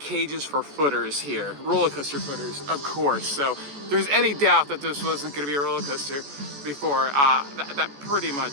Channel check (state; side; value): late; left; 14 ms